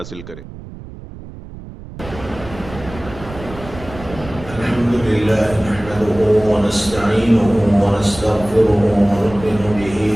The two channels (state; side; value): noise; right; rumble, 15 dB below the sound